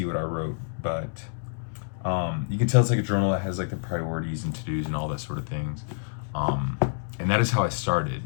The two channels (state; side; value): silent; right; digital silence